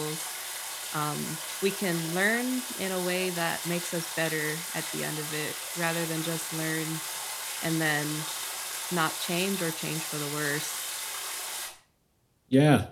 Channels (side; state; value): both; identical; correlation 1.00